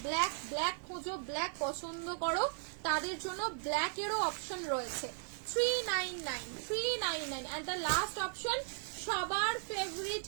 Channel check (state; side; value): silent; left; 53 dB below the other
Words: ব্ল্যাক ব্ল্যাক খোঁজো, ব্ল্যাক পছন্দ করো, তাদের জন্য ব্ল্যাক এরও অপশন রয়েছে। 399 এন্ড দ্য লাস্ট অপশন সবার favourite